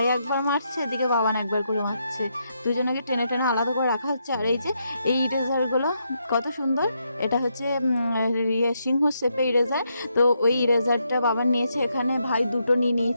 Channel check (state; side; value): inverted; both; correlation -0.80